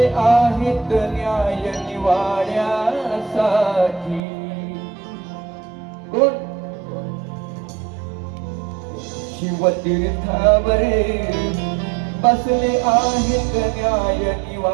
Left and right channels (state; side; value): drops out; left; at 4.2 s